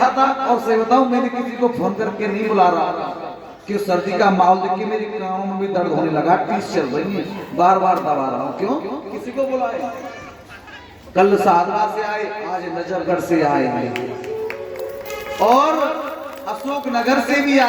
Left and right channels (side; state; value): both; identical; correlation 1.00